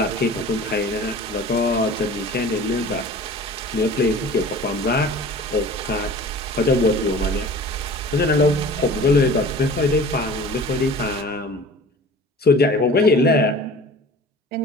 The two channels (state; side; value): normal; both; correlation 0.42